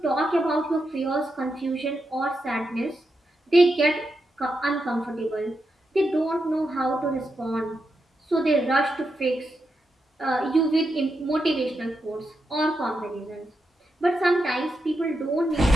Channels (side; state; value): both; normal; correlation 0.86